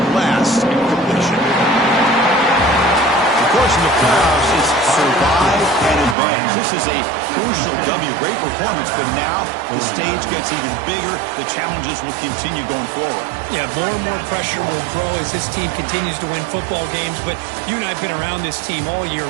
last incompletion. Of course, in the playoffs, it's survive and advance. This is a crucial W. Great performance, but now the stage gets even bigger. The challenges will continue going forward. Yeah, more and more pressure will grow as this team continues to win football games. But you and I have been around this team all year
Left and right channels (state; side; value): drops out; left; at 6.2 s